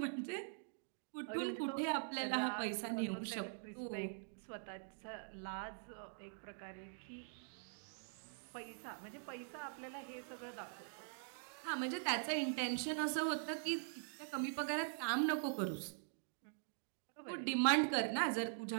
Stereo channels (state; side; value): silent; left; digital silence